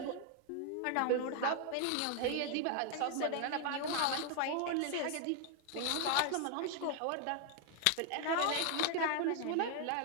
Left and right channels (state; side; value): different; both; correlation 0.00